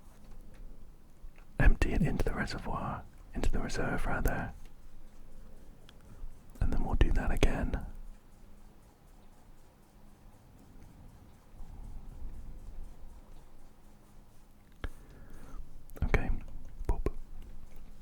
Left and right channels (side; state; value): both; identical; correlation 1.00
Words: empty it into the reservoir, into the reserve rather, and then we'll do that again. Okay, boop.